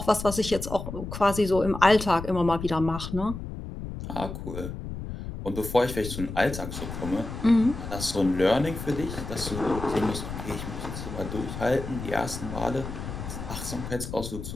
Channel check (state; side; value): noise; left; rumble, 8 dB below the sound